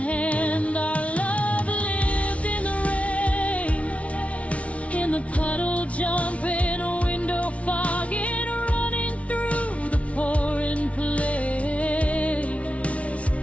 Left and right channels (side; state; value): right; late; 0.064 ms